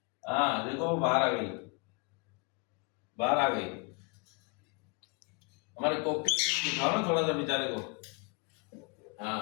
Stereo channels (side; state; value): right; quieter; 32.6 dB